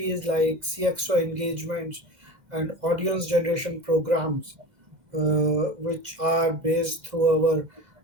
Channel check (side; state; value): left; late; 2.1 ms